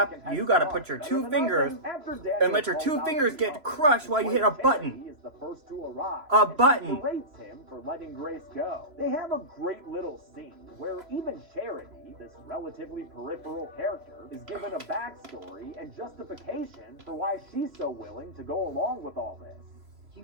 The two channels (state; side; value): late; left; 3.0 ms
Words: rap, you gotta put your two fingers and let your two fingers get crushed while you hit a button. Is the first to arrive. A button. He berates him for letting Grace go. They have a great little scene where even Charity, this relatively peripheral character, is given a backstory and justification for why she's so willing to go along with all this. You